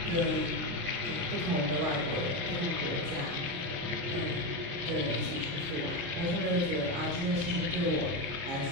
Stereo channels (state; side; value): late; left; 29 ms